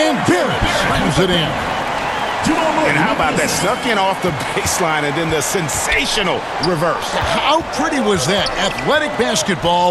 Barrett slams it in. And how about that? Snuck in off the baseline and then the sensational reverse. How pretty was that? Athletic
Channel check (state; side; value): identical; both; correlation 1.00